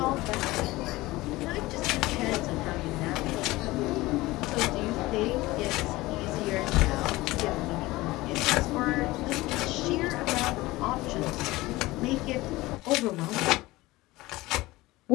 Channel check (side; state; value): right; quieter; 19.4 dB